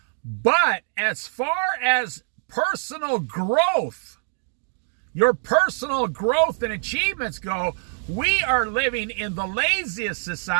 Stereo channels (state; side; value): silent; left; 61 dB below the other